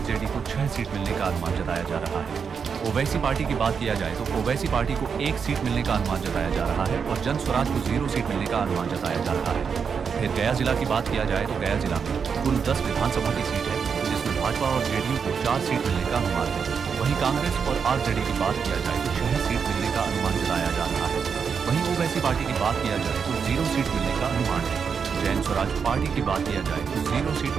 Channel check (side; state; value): left; quieter; 6.3 dB